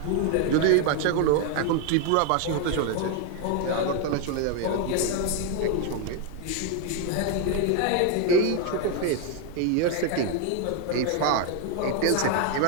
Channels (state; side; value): different; both; correlation 0.01